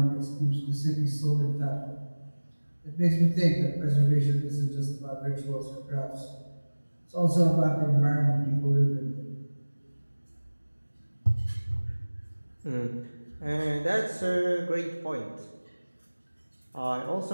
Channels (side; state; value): both; inverted; correlation -1.00